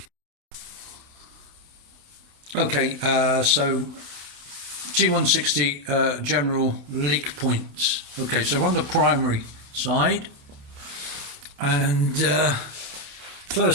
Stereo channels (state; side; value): late; left; 28 ms